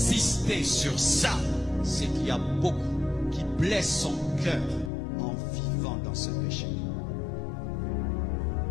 sur ça, c'est qu'il y a beaucoup qui blessent son cœur en vivant dans ce péché.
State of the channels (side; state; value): right; drops out; at 4.9 s